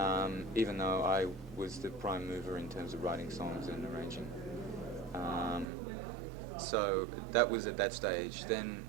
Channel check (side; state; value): left; drops out; at 5.7 s